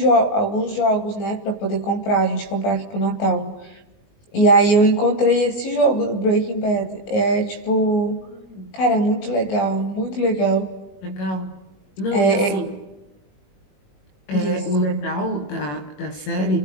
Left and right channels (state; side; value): late; right; 20 ms